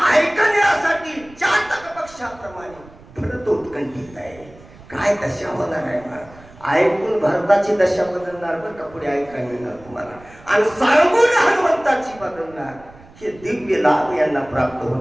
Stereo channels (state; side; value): noise; right; rumble, 23 dB below the sound